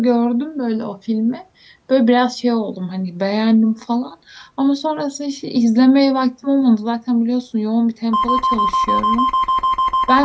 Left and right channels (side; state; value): both; identical; correlation 1.00